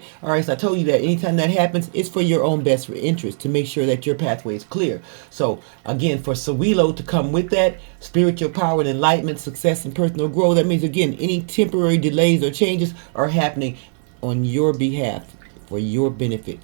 All right, so I told you that anytime that happens, it's for your own best interest to make sure that your pathway is clear. So again, for Sawilo to come with that, spiritual power and enlightenment, success and personal growth, that means again, any temporary delays or changes are happening on your behalf for your benefit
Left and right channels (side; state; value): left; silent; digital silence